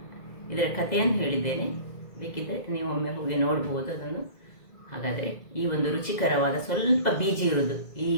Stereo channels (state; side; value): late; right; 2.0 ms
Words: ಇದರ ಕಥೆಯನ್ನು ಹೇಳಿದ್ದೇನೆ. ಬೇಕಿದ್ದರೆ ನೀವು ಒಮ್ಮೆ ಹೋಗಿ ನೋಡ್ಬೋದು ಅದನ್ನು. ಹಾಗಾದರೆ ಈ ಒಂದು ರುಚಿಕರವಾದ ಸ್ವಲ್ಪ ಬೀಜ ಇರುವುದು, ಈ